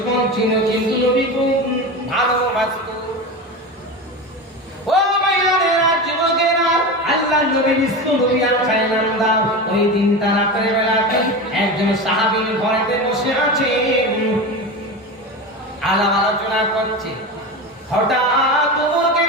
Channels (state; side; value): normal; both; correlation 0.24